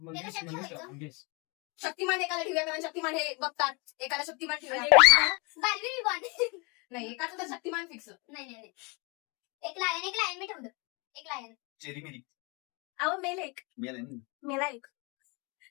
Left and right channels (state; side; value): quieter; right; 30.0 dB